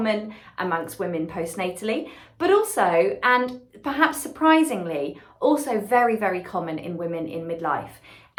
amongst women postnatally, but also, and perhaps surprisingly, also very, very common in women in midlife.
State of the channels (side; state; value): both; identical; correlation 1.00